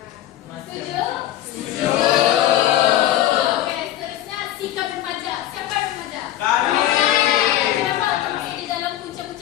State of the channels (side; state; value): right; quieter; 13.3 dB